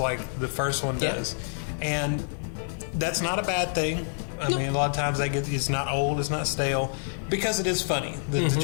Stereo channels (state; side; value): silent; right; digital silence